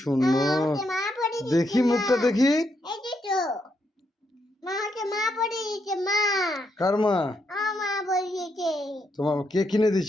সুন্দর, দেখি মুখটা দেখি। কার মা? তোমার কে কিনে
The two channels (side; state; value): both; normal; correlation 0.79